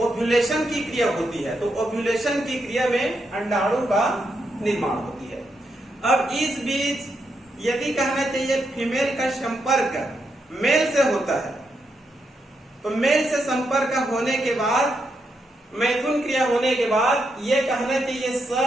की क्रिया होती है। तो ओव्यूलेशन की क्रिया में अंडाणु का निर्माण होती है। अब इस बीच यदि कहना चाहिए फीमेल का संपर्क मेल से होता है, तो मेल से संपर्क होने के बाद मैथुन क्रिया होने के बाद ये कहना चाहिए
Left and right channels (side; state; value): both; normal; correlation 0.82